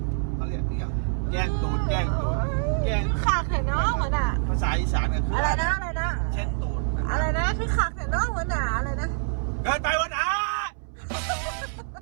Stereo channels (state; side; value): silent; left; 61 dB below the other